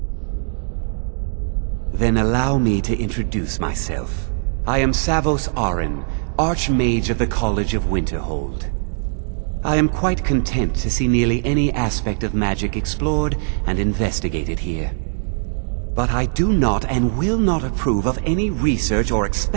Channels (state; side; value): silent; left; digital silence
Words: Then allow me to introduce myself. I am Savos Arin, Archmage of the College of Winterhold. I am quite content to see nearly any aspect of magic explored and investigated here. But I do not and will not approve of any research or